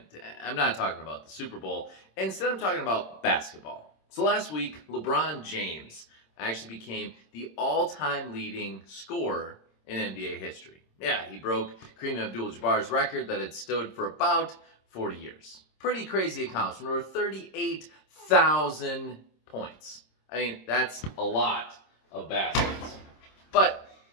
I'm not talking about the Super Bowl. Instead, I'm talking about basketball. So last week, LeBron James actually became the all-time leading scorer in NBA history. Yeah, he broke Kareem Abdul-Jabbar's record that had stood for about 40 years. Pretty crazy accomplishment, over 38,000 points. I mean, that's a lot of baskets. But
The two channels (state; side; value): late; right; 26 ms